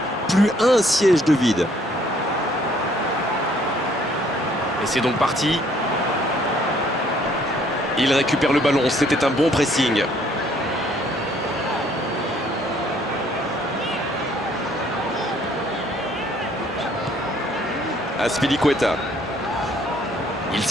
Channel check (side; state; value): both; normal; correlation 0.63